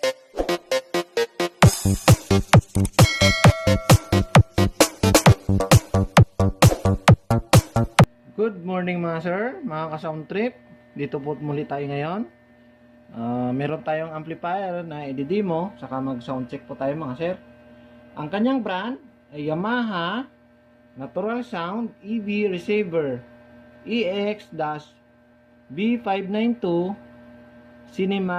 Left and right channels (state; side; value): identical; both; correlation 1.00